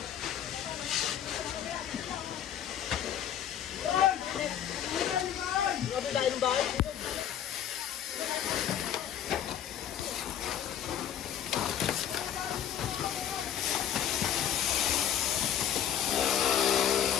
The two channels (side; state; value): right; quieter; 9.9 dB